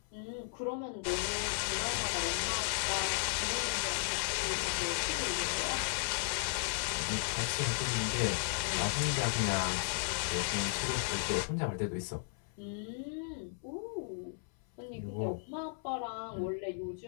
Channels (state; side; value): silent; right; 54 dB below the other